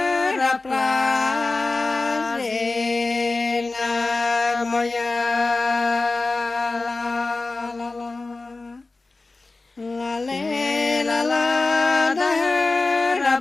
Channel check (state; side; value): quieter; right; 3.5 dB